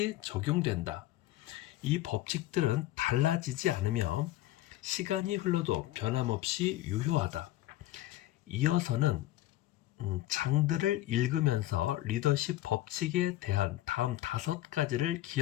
적용된다. 이 법칙들은 달라지지 않으며 시간이 흘러도 변함없이 유효하다. 이어서는 장들을 읽으면서 리더십 법칙에 대한 다음 5가지를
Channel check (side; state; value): right; quieter; 15.3 dB